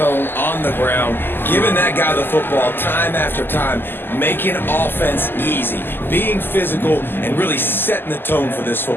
on the ground, giving that guy the football time after time, making offense easy, being physical, and really setting the tone for this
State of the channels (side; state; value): right; late; 0.10 ms